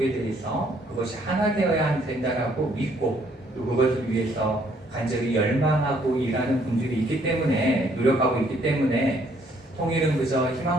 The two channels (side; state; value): both; normal; correlation 0.66